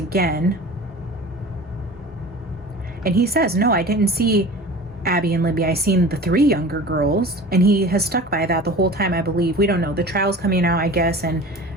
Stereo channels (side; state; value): both; normal; correlation 0.38